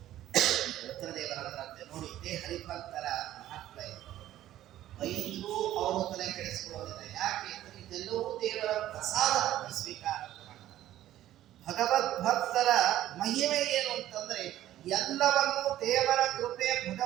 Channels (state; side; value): quieter; left; 13.3 dB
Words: ರುದ್ರದೇವರಂತೆ ನೋಡಿ, ಇದೇ ಹರಿಭಕ್ತರ ಮಹತ್ವ ಇದೆ. ಬೈದ್ರು ಅವರು ತಲೆ ಕೆಡಿಸಿಕೊಳ್ಳೋದಿಲ್ಲ. ಯಾಕೆ ಅಂದ್ರೆ ಇದೆಲ್ಲವೂ ದೇವರ ಪ್ರಸಾದ ಸ್ವೀಕಾರ ಮಾಡ್ತಾರೆ. ಭಗವದ್ ಭಕ್ತರ ಮಹಿಮೆ ಏನು ಅಂತಂದ್ರೆ ಎಲ್ಲವನ್ನೂ ದೇವರ ಕೃಪೆ,